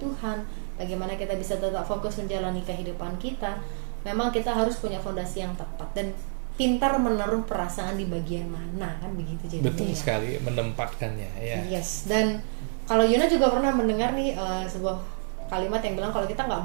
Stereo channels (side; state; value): left; silent; 59 dB below the other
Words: Tuhan, bagaimana kita bisa tetap fokus menjalani kehidupan kita, memang kita harus punya fondasi yang tepat dan pintar menaruh perasaan di bagian mana, kan begitu jadinya. Betul sekali, menempatkannya ya. Yes, dan kalau Yuna juga pernah mendengar nih sebuah kalimat yang bilang kalau kita nggak